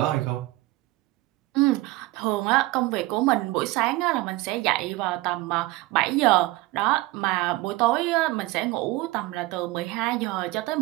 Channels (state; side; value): quieter; left; 19.5 dB